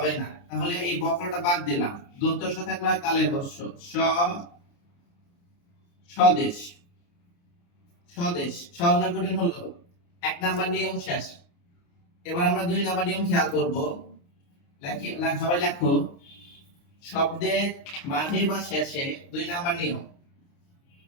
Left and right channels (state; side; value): late; right; 29 ms